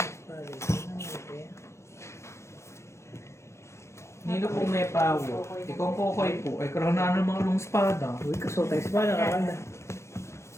pali. Nilo pong may pawo. Ikaw ang kokoy po. Ay, karoon na ng mga long spada. Uy, kasultay sa pala. Kakanda.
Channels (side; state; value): right; late; 0.13 ms